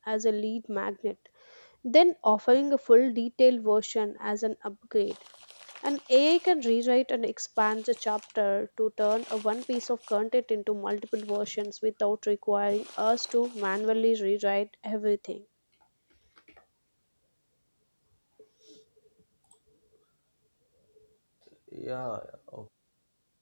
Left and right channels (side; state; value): both; inverted; correlation -1.00